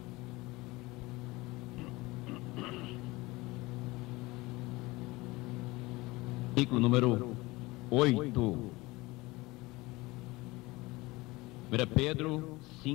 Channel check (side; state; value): right; quieter; 21.6 dB